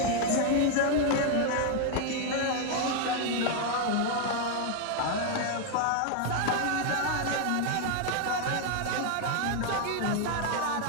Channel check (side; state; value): both; different; correlation 0.00